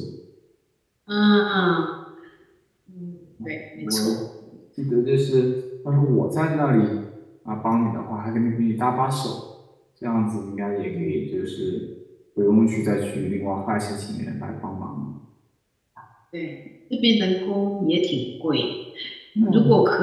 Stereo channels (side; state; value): both; identical; correlation 1.00